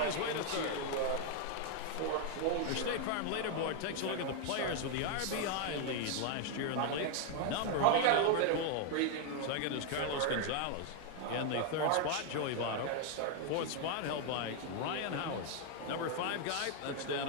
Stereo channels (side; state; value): both; different; correlation 0.00